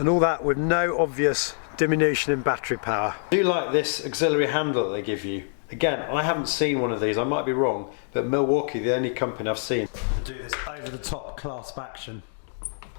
all that with no obvious diminution in battery power. I do like this auxiliary handle that they give you. Again, I haven't seen one of these, I might be wrong, but Milwaukee, the only company I've seen to do this over-the-top clasp action.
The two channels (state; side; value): silent; right; digital silence